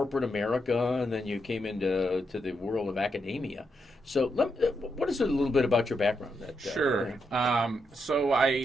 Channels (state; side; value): normal; both; correlation 0.82